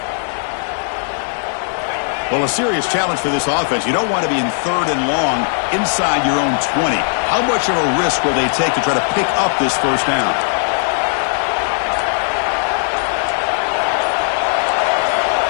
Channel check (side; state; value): right; silent; 64 dB below the other